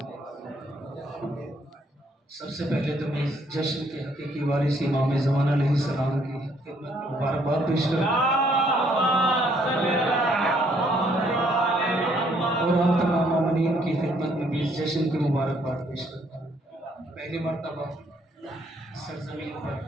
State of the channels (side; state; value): both; normal; correlation 0.67